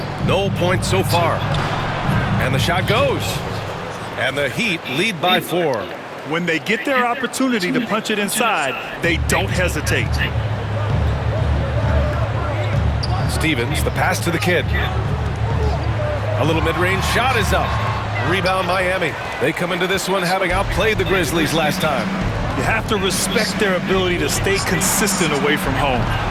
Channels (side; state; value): both; identical; correlation 1.00